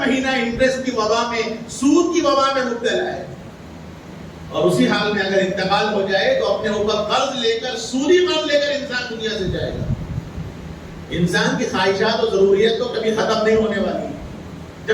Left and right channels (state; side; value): identical; both; correlation 1.00